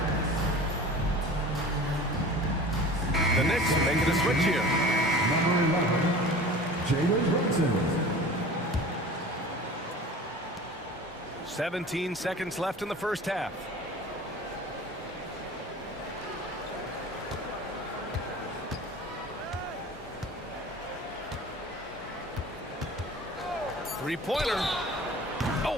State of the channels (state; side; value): normal; both; correlation 0.39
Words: The Knicks making a switch here. Number 11, Jalen Brunson. 17 seconds left in the first half. Three-pointer.